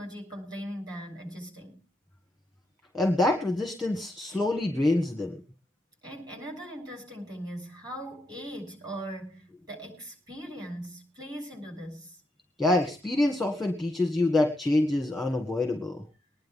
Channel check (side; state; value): both; normal; correlation 0.82